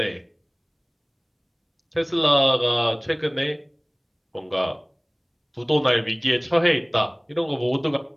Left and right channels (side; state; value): both; identical; correlation 1.00